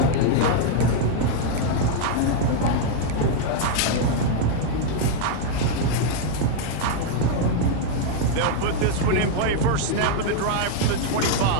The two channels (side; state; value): both; different; correlation 0.00